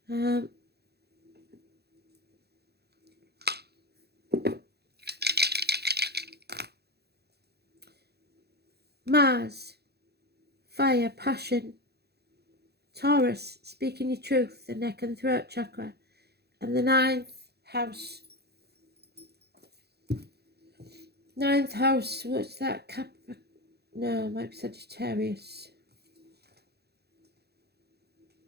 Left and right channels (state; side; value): late; left; 0.47 ms